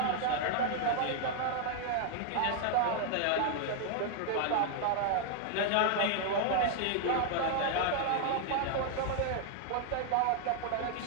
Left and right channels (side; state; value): both; different; correlation 0.00